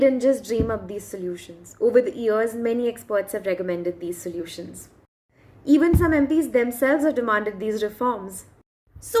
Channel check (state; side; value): identical; both; correlation 1.00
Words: just dream up these solutions. Over the years, many experts have recommended these solutions. Even some MPs themselves have demanded these reforms. So